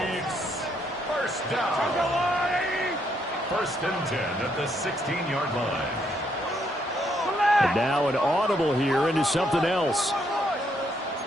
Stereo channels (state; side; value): normal; both; correlation 0.73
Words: 1st down. 1st and 10 at the 16-yard line. And now an audible here into something else.